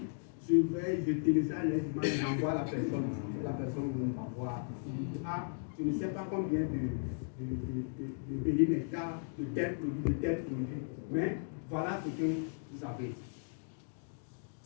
je vais, je télécharge les images, j'envoie la personne. La personne va voir. Ah, je ne sais pas combien de périmètres, de tel produit, mais voilà ce que vous avez.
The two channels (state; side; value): silent; right; digital silence